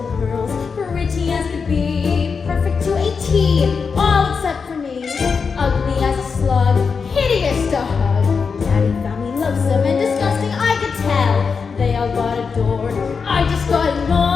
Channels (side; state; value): right; quieter; 5.4 dB